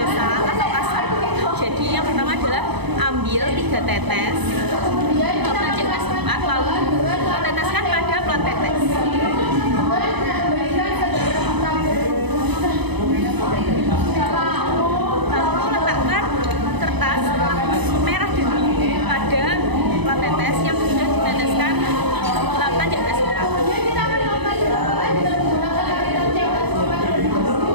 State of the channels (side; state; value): left; late; 0.99 ms